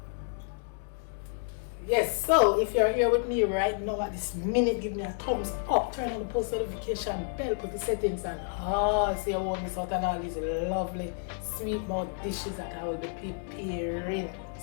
Yes, so if you're here with me right now at this minute, give me a thumbs up, turn on the post notification bell, put the settings on. So you won't miss out on all these lovely sweet mouth dishes that I will be preparing.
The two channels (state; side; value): silent; right; 58 dB below the other